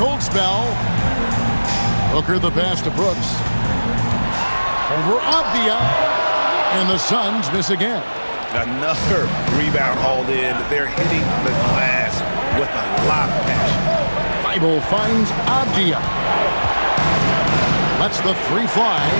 spell. Booker the pass to Brooks. Over Avdia. And the Suns miss again. Another rebound hauled in. They're hitting the glass with a lot of passion. Thibault finds Avdia. Lets the three fly.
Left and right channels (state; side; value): inverted; both; correlation -1.00